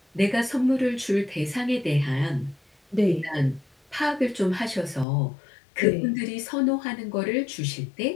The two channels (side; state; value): right; drops out; at 5.1 s